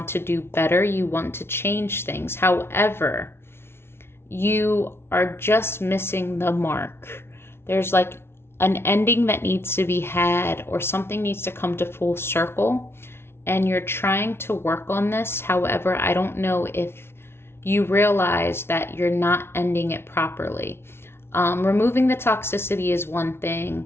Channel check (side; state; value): right; late; 0.12 ms